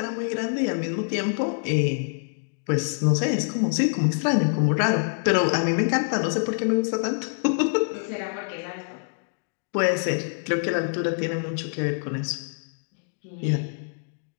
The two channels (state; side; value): silent; right; digital silence